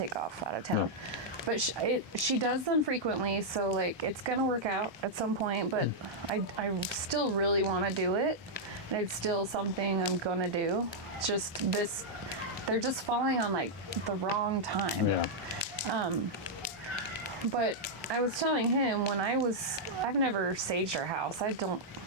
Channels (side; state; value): both; normal; correlation -0.05